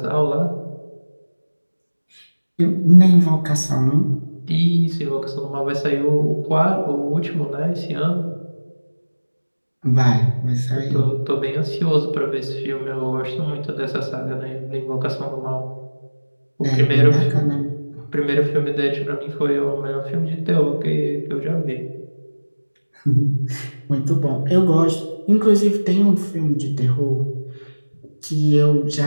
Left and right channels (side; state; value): both; inverted; correlation -1.00